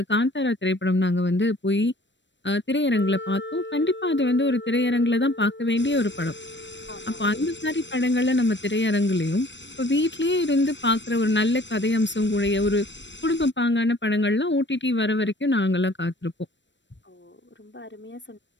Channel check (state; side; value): late; right; 0.53 ms